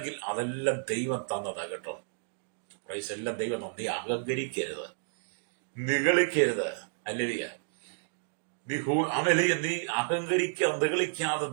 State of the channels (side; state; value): left; silent; digital silence